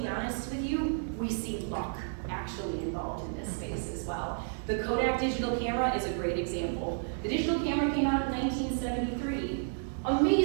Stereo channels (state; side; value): silent; left; 57 dB below the other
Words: honest with you, we see luck actually involved in this space as well. The Kodak digital camera is a great example. The digital camera came out in 1973.